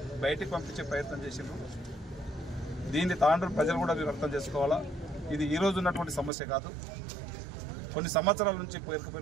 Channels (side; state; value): left; drops out; at 6.3 s